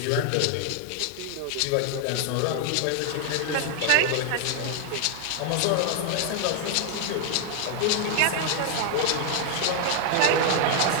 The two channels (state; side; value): different; both; correlation 0.00